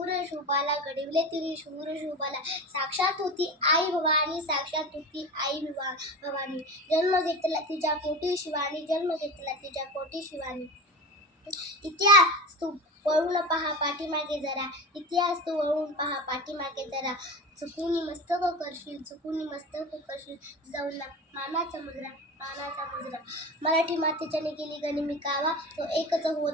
शूबाला, घडविले तिने शूर शूबाला. साक्षात होती आई भवानी, साक्षात होती आई भवानी. जन्म घेतला तिच्या पोटी शिवानी, जन्म घेतला तिच्या पोटी शिवानी. इतिहास तू वळून पहा पाठीमागे जरा, इतिहास तू वळून पहा पाठीमागे जरा. चुकून मस्तक करशील, चुकून मस्तक करशील. जिजाऊंना मानाचा मुजरा. मराठी मातेच्याने केली गनिमी कावा, तो एकच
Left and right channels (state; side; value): normal; both; correlation 0.28